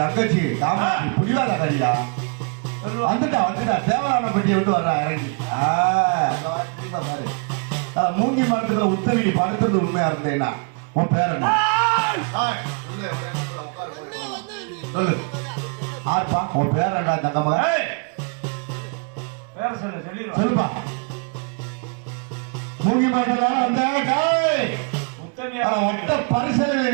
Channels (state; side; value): quieter; left; 37.4 dB